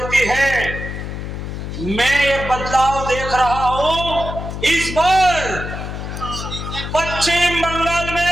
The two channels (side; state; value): left; noise; hum, 7 dB below the sound